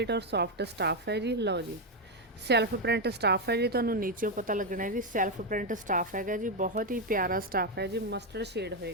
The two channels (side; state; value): both; normal; correlation 0.05